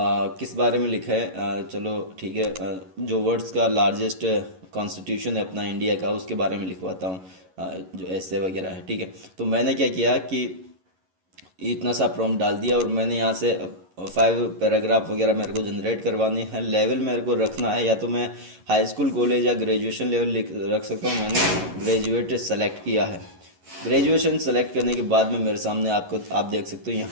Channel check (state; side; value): late; left; 11 ms